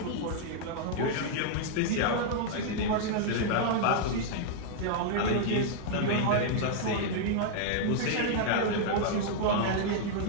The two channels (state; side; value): different; both; correlation -0.01